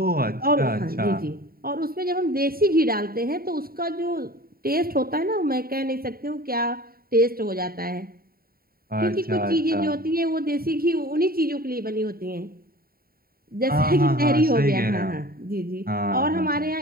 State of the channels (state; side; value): late; left; 0.43 ms